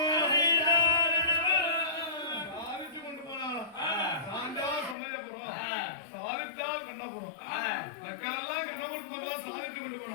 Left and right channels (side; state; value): right; drops out; at 5.0 s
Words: சாதிச்சு கொண்டு போனாலும் சாந்தா சமயபுரம் சாதித்தால் கண்ணபுரம் மக்களெல்லாம் கண்ணபுரத்து சாதிச்சு கொண்டு